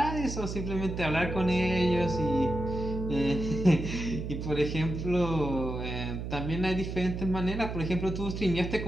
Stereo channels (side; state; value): right; noise; hum, 5 dB below the sound